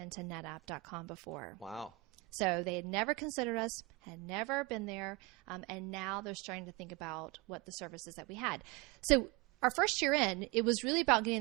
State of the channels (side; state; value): left; quieter; 22.9 dB